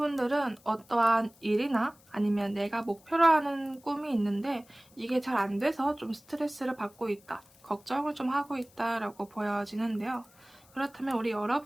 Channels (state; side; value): noise; left; hiss, 28 dB below the sound